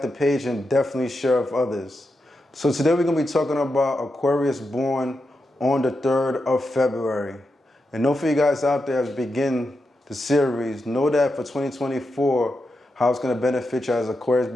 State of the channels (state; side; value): normal; both; correlation 0.87